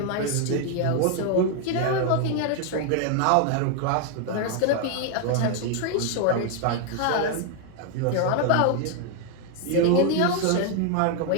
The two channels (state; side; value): different; both; correlation 0.00